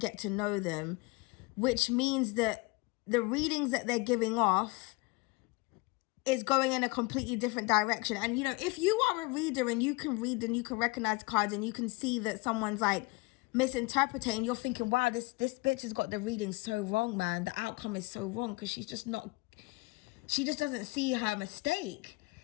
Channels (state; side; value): quieter; right; 25.4 dB